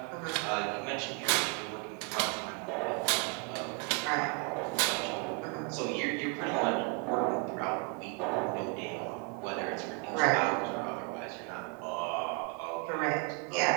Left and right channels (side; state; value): left; quieter; 32.7 dB